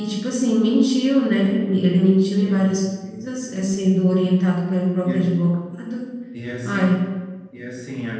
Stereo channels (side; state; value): both; identical; correlation 1.00